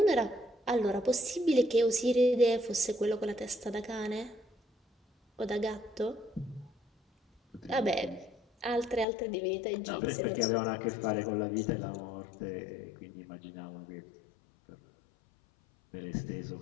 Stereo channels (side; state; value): right; drops out; at 9.1 s